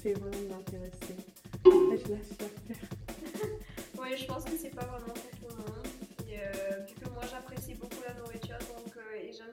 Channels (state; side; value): identical; both; correlation 1.00